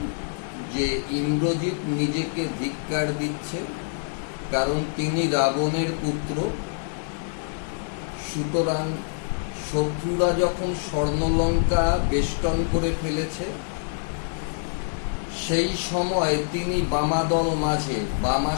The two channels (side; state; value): right; silent; digital silence